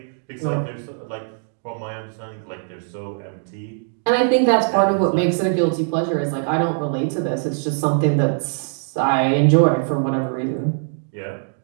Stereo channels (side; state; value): left; silent; digital silence